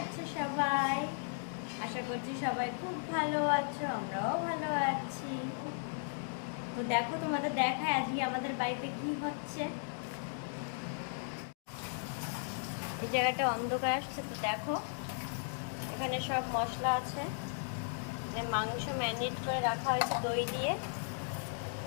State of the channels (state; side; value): silent; right; digital silence